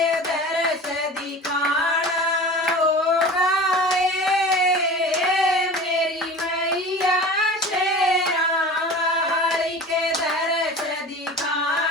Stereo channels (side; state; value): both; normal; correlation 0.36